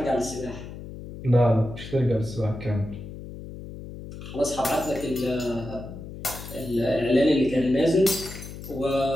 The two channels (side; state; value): left; noise; hum, 12 dB below the sound